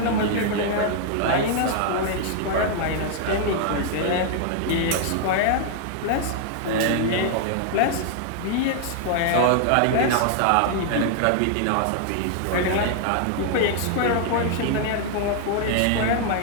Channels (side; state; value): both; different; correlation 0.00